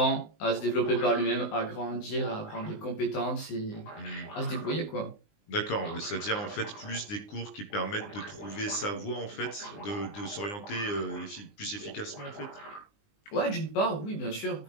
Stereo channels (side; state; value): right; late; 19 ms